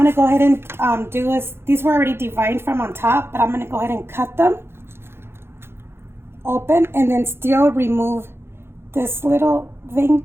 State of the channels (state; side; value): late; left; 0.12 ms